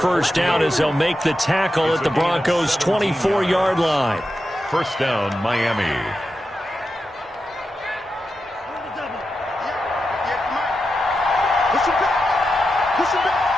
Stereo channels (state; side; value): normal; both; correlation 0.89